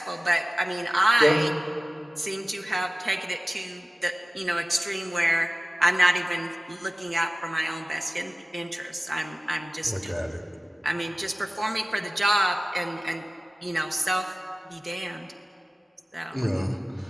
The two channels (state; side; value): normal; both; correlation 0.97